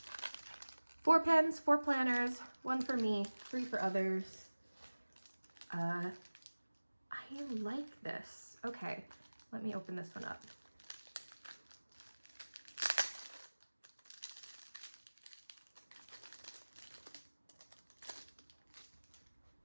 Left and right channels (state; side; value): inverted; both; correlation -1.00